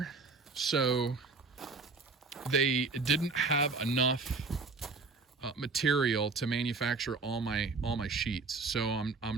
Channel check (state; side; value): quieter; left; 4.2 dB